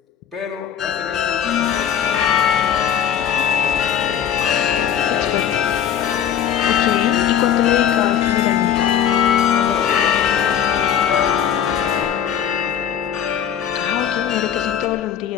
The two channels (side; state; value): right; quieter; 9.1 dB